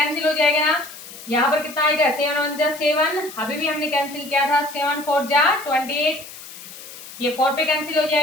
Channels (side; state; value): left; noise; hiss, 15 dB below the sound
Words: हो जाएगा ना, यहाँ पर कितना आएगा 7 1 जा 7, अभी भी हमने कैंसिल किया था, 7 4 जा 28, ये 4 पे कैंसिल हो